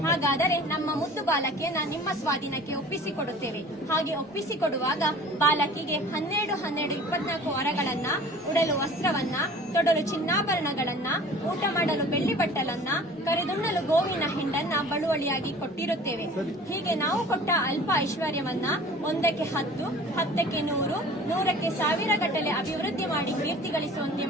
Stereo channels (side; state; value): both; normal; correlation 0.45